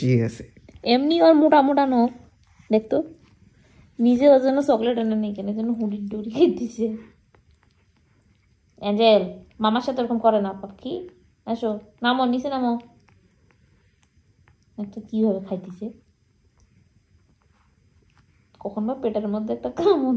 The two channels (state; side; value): identical; both; correlation 1.00